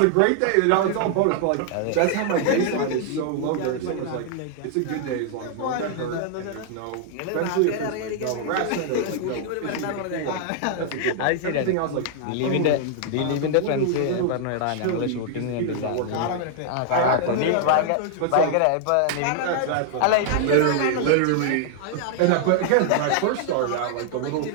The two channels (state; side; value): different; both; correlation 0.00